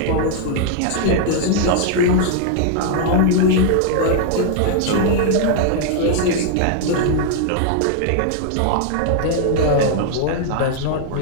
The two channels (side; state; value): both; different; correlation 0.00